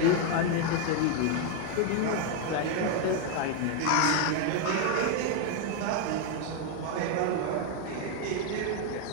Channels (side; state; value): both; different; correlation 0.01